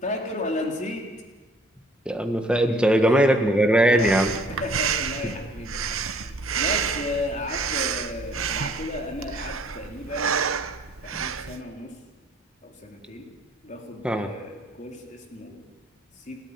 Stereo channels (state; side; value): normal; both; correlation 0.58